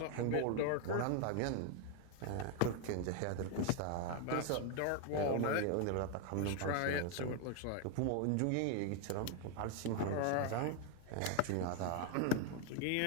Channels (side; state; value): both; different; correlation 0.00